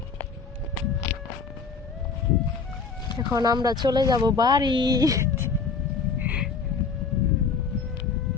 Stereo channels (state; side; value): quieter; right; 5.1 dB